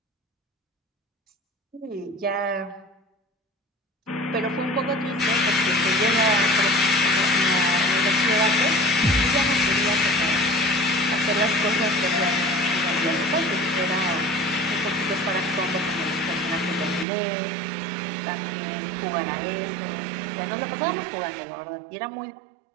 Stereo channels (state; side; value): drops out; left; at 17.1 s